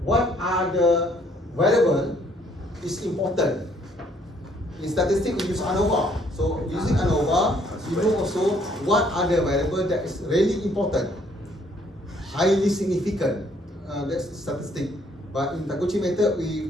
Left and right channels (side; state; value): both; normal; correlation 0.65